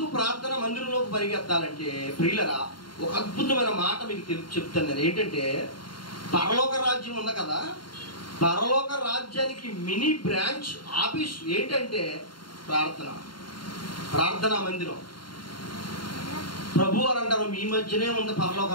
ప్రార్థన మందిరంలోకి పరిగెత్తాలంటే ప్రియులరా, ఒక అద్భుతమైన మాట మీకు చెప్తాను నేను. ఏంటంటే, పరలోక రాజ్యం ఉంది కదా, పరలోక రాజ్యానికి మినీ బ్రాంచ్ ఆఫీస్ ఏంటంటే ప్రార్థనా మందిరం. ప్రభు అని అంటారు, మీ మధ్యనే ఉంది పరలోక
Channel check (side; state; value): right; late; 0.72 ms